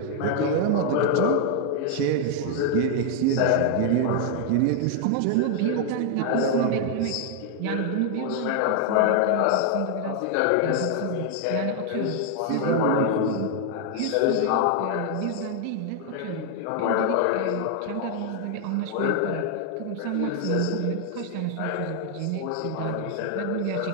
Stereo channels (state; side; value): different; both; correlation 0.00